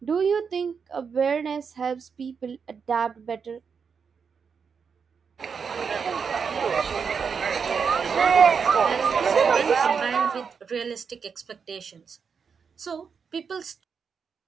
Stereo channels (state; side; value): quieter; left; 6.1 dB